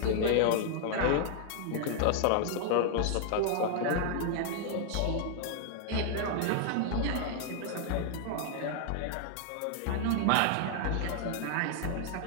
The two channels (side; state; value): both; different; correlation 0.00